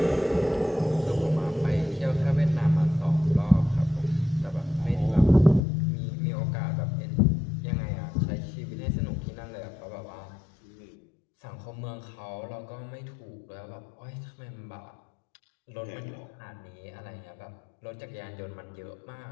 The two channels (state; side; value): drops out; right; at 5.6 s